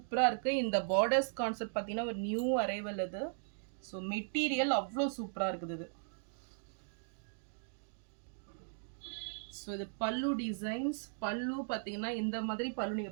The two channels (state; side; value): silent; left; digital silence